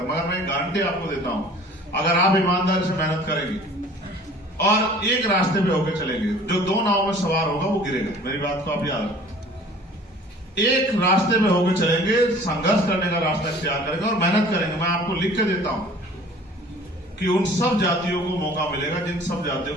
मगर मैं गारंटी आपको देता हूं, अगर आप ईमानदारी से मेहनत करेंगे और एक रास्ते पे होकर चलेंगे, जो 2 नाव में सवार होगा वो गिरेगा। मेरी बात को आप याद रखें। एक रास्ते में होकर चलेंगे, संघर्ष करने का रास्ता इख्तियार करेंगे और मेहनत करेंगे। मैं आपको लिख के देता हूं कि उन सब जातियों को मौका मिलेगा जिन सब जातियों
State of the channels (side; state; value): both; normal; correlation 0.48